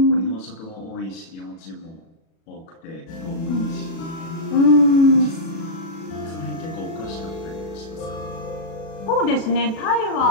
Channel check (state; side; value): late; right; 36 ms